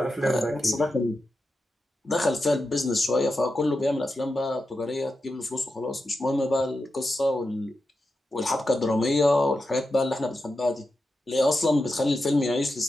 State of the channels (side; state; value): both; normal; correlation 0.89